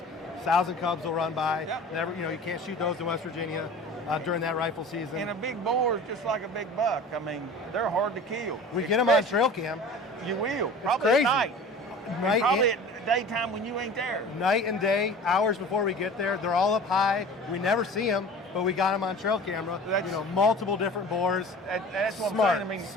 Sows and cubs will run by. Never, you can't shoot those in West Virginia during that rifle season. And a big boar is just like a big buck. I mean, they're hard to kill. We get them on trail cam. You will. Probably at night. Probably at daytime when you ain't there. Night and day, hours before we get there. They're all up high. We never see them, but we got them on trail camera. Multiple different boars. That's what smart, I'm saying. I mean,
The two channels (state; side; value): normal; both; correlation 0.39